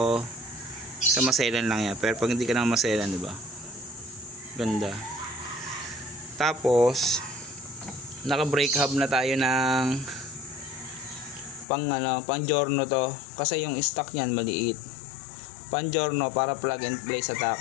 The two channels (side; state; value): right; drops out; at 11.7 s